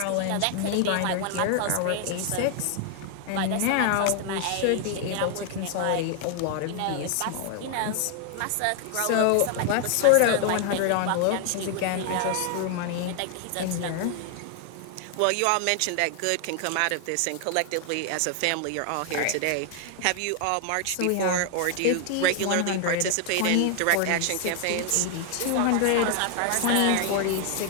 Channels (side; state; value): both; different; correlation 0.00